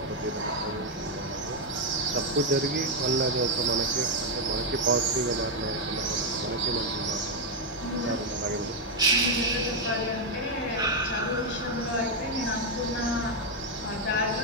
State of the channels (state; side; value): normal; both; correlation 0.01